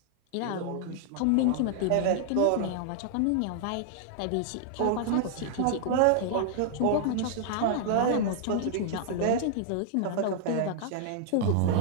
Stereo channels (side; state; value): both; different; correlation -0.01